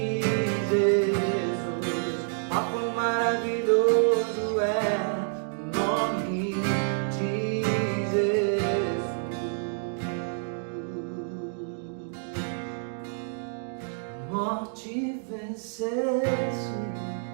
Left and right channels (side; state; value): left; silent; digital silence